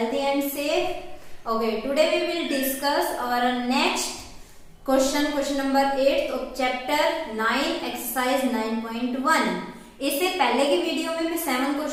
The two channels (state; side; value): identical; both; correlation 1.00